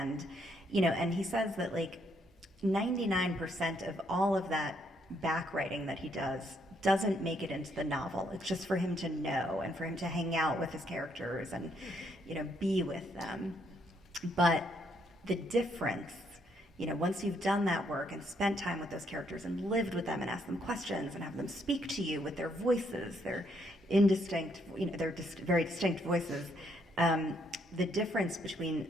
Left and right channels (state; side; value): normal; both; correlation 0.72